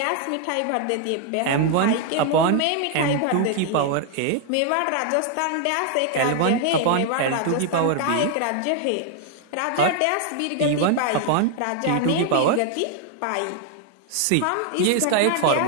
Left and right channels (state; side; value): different; both; correlation 0.00